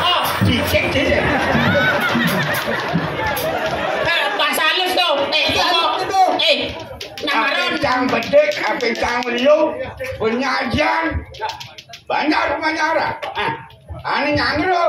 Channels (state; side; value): identical; both; correlation 1.00